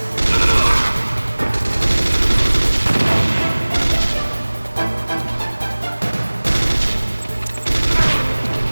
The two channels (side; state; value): both; inverted; correlation -1.00